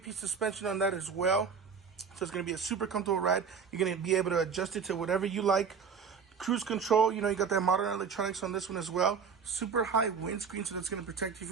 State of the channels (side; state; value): left; quieter; 6.1 dB